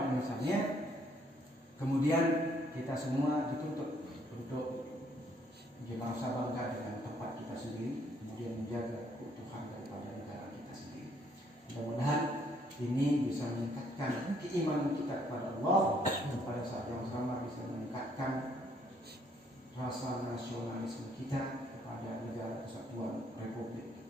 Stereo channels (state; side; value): normal; both; correlation 0.67